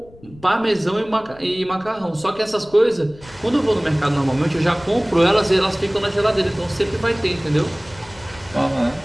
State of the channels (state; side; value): noise; left; rumble, 23 dB below the sound